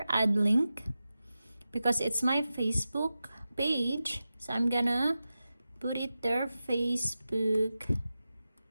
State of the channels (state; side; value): inverted; both; correlation -0.93